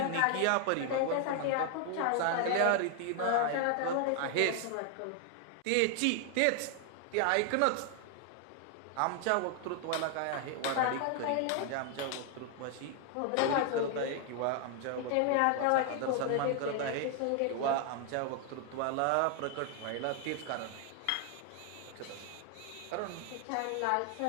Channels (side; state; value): both; different; correlation 0.00